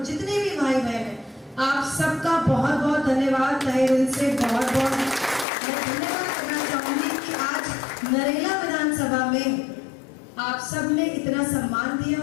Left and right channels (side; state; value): right; drops out; at 5.5 s